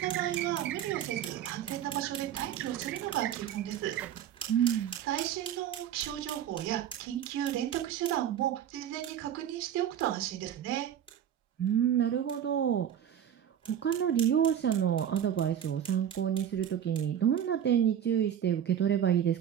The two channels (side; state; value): left; quieter; 9.8 dB